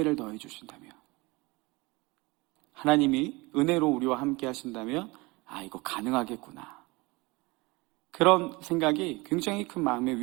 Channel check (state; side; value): quieter; left; 24.1 dB